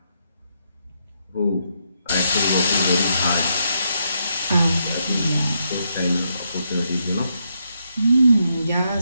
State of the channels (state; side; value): inverted; both; correlation -0.79